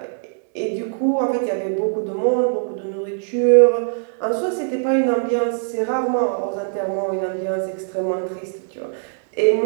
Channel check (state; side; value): silent; left; 65 dB below the other